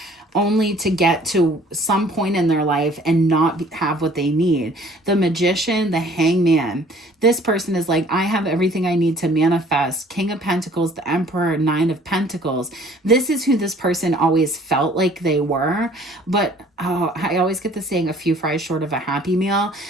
only to get to some point in their life and not have what they need. The Magician, the Hangman. This person is like, I have everything I need to manifest. King of Pentacles, the Emperor, Nine of Pentacles. This is who this person always felt like they were. But I always get the saying, a few fries short of a Happy Meal.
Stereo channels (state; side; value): normal; both; correlation 0.54